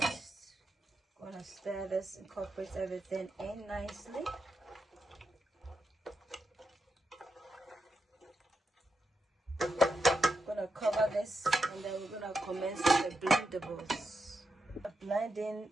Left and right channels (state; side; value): normal; both; correlation 0.85